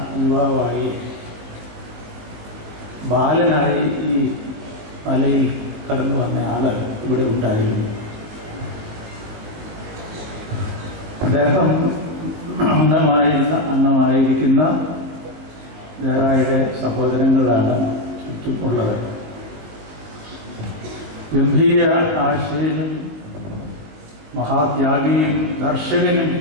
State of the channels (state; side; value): late; left; 20 ms